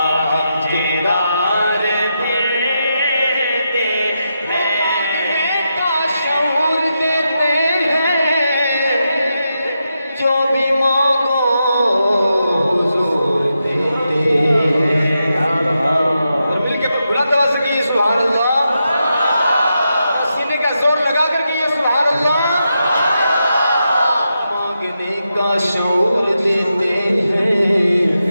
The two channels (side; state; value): both; inverted; correlation -0.86